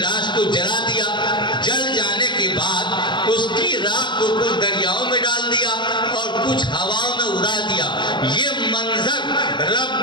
کو جلا دیا۔ جل جانے کے بعد اس کی راکھ کو کچھ دریاؤں میں ڈال دیا اور کچھ ہواؤں میں اڑا دیا۔ یہ منظر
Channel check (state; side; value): late; right; 0.22 ms